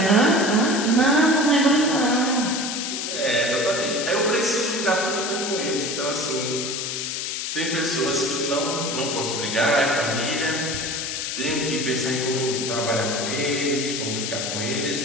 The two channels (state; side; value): noise; left; hiss, 3 dB below the sound